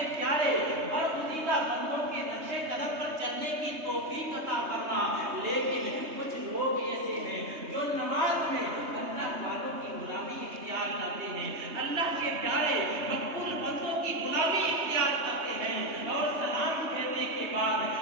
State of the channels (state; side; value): late; left; 3.2 ms